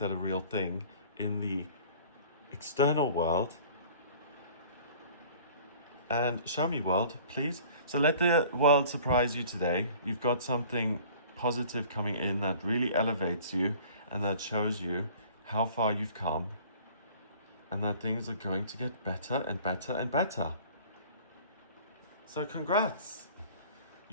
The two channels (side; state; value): both; inverted; correlation -0.49